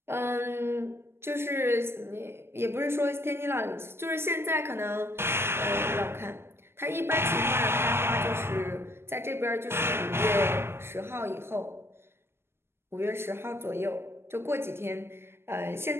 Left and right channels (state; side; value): late; left; 0.12 ms